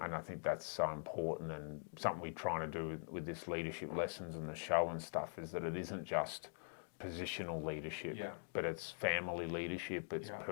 I think that's so important, and something we're trying to do with this leadership lessons and the show and stuff is that it isn't just positional leadership, Yeah. but it's family leadership, it's Yeah.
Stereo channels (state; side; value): silent; right; digital silence